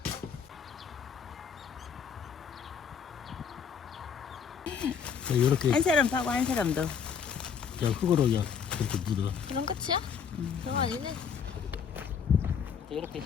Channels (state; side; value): quieter; right; 6.9 dB